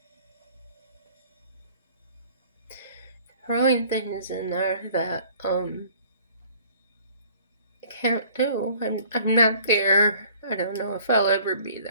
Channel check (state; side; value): inverted; both; correlation -0.54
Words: Throwing things in there that I can't do. I'm not there. I don't know if I'll ever be